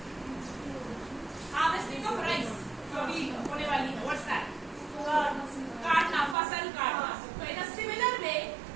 Harvesting of rice. कभी होने वाली है. What's that? काटना, फसल काटना. So in a similar way,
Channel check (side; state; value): left; drops out; at 6.4 s